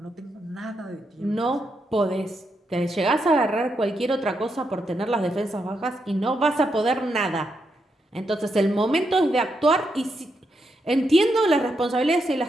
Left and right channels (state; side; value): normal; both; correlation 0.82